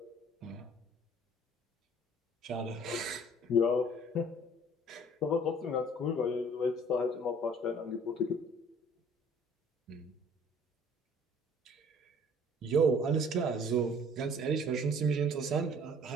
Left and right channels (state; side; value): normal; both; correlation 0.54